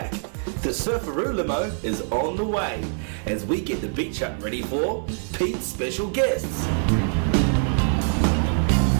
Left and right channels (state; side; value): silent; left; digital silence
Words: The Surfaroo limo is on the way as we get the beach hut ready for Pete's special guests.